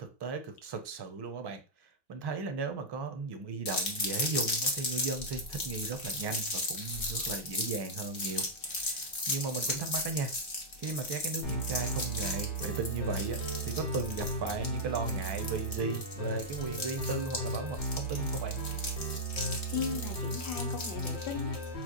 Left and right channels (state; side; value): late; right; 3.1 ms